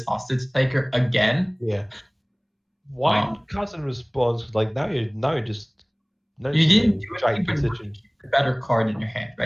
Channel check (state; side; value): identical; both; correlation 1.00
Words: hostage taker again. Yeah. Why cast in response? Like now you're just. You didn't do giant anything but position. keep the better card in your hand,